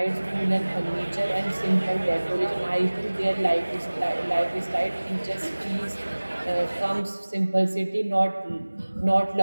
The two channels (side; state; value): both; inverted; correlation -1.00